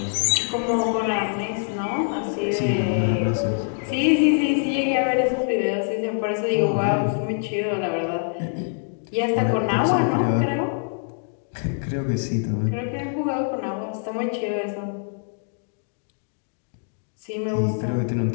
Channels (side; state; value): right; silent; digital silence